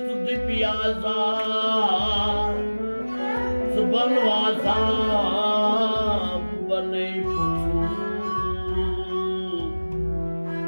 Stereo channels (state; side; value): inverted; both; correlation -1.00